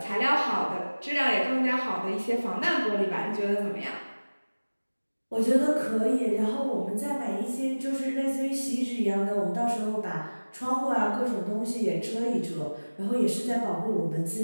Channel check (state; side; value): inverted; both; correlation -1.00